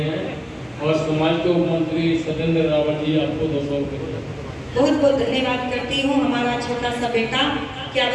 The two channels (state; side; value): identical; both; correlation 1.00